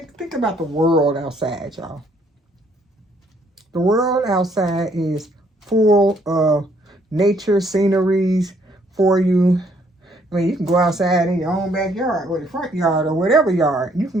think about the world outside, y'all. The world outside is full of nature sceneries for you. I mean, you can go outside in your own backyard or the front yard or whatever yard. You can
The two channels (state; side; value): normal; both; correlation 0.67